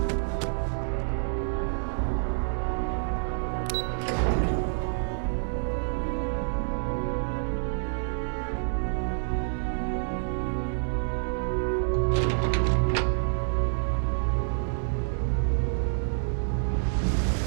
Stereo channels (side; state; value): left; silent; digital silence